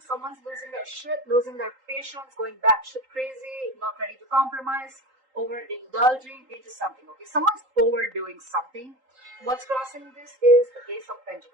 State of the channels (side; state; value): left; late; 3.8 ms